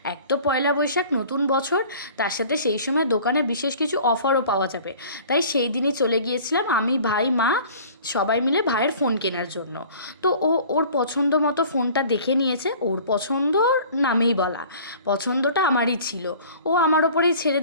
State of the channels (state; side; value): inverted; both; correlation -0.47